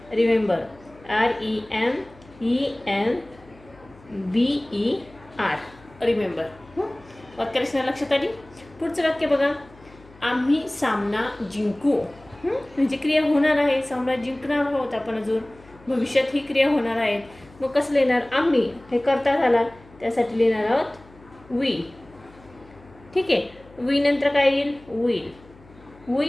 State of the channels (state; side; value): noise; left; hum, 24 dB below the sound